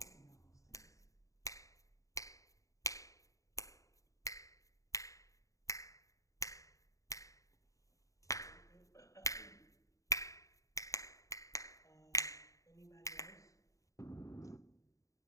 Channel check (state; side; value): late; right; 0.16 ms